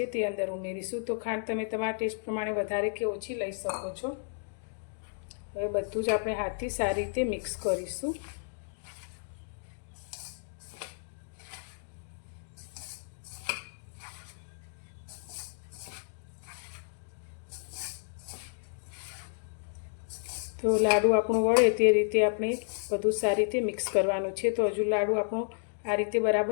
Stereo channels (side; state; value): right; silent; digital silence